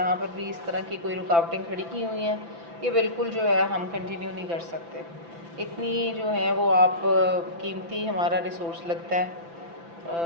पर भी इस तरह की कोई रुकावटें खड़ी की हुई हैं, ये बिल्कुल जो है हम कंटिन्यू नहीं कर सकते। इतनी जो है वो आप कीमती हमारा रिसोर्स लगता है,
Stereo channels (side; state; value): left; late; 5.9 ms